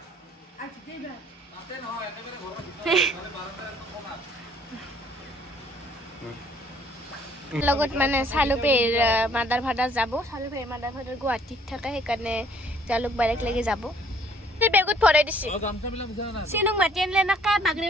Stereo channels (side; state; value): both; normal; correlation 0.60